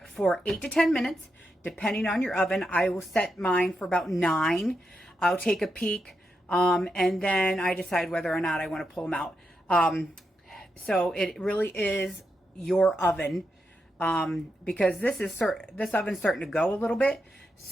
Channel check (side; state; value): both; normal; correlation 0.85